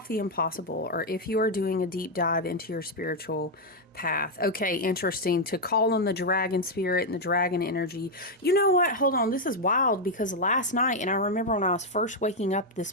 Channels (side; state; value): both; normal; correlation 0.01